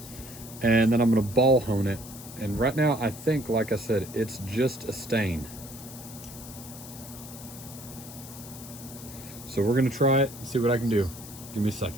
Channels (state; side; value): noise; left; hiss, 15 dB below the sound